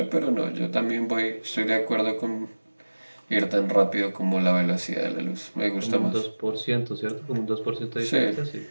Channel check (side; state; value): both; inverted; correlation -1.00